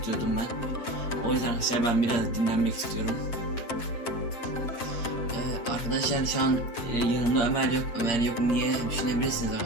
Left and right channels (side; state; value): right; late; 7.6 ms